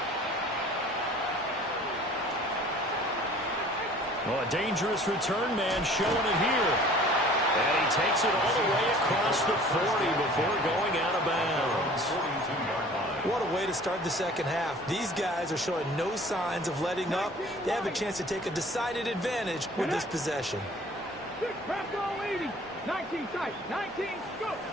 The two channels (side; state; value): both; normal; correlation 0.49